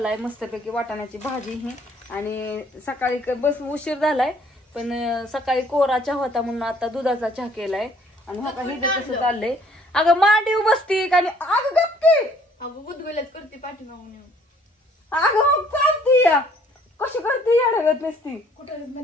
मस्तपैकी, वाटाण्याची भाजी ही. आणि सकाळी बस उशीर झालाय, पण सकाळी कोरा चहा होता म्हणून आता दुधाचा चहा केलाय. आणि हा काही कसं चाललंय. अगं मांडीव बसती आणि अगं गप्पी, अगं गुदगुल्यात करते पाठीमागून येऊन. अगं चालती या कशी करते येडगत नसती. कुठं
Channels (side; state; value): both; normal; correlation 0.60